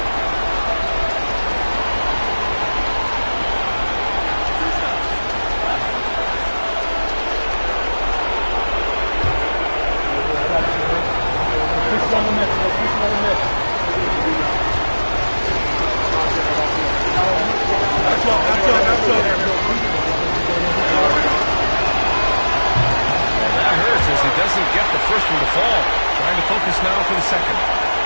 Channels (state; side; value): inverted; both; correlation -1.00